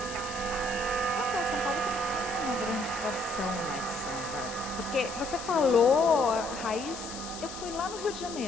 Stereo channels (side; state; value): left; noise; hiss, 11 dB below the sound